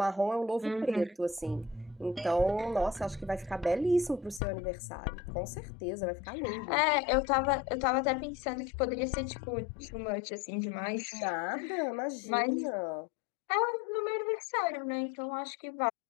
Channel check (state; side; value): drops out; right; at 4.4 s